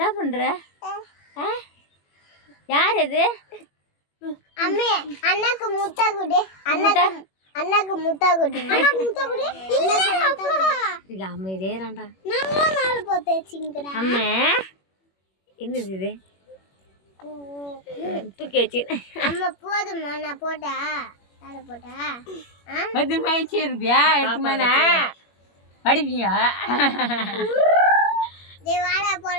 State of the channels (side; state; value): right; late; 21 ms